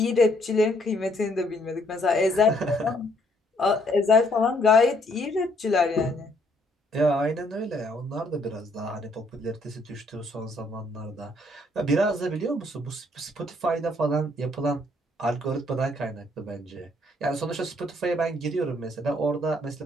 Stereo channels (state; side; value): normal; both; correlation 0.67